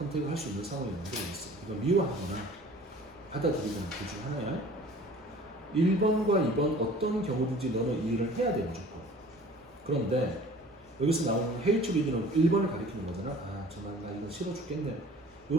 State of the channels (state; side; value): normal; both; correlation 0.47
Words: 할 수 있는 상황이 만들어졌어. 이거 미워하거나 받아들이거나 둘 중 하나야. 1번과 2번 어떤 경우든지 너는 이 일을 해야 돼 무조건. 그런데 여기서 나오는 hatred는 1번을 가리키는 거잖아. 정말 나 이거 싫어 죽겠네.